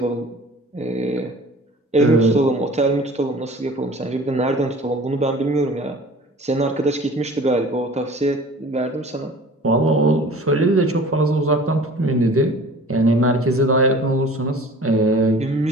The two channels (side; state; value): both; normal; correlation 0.44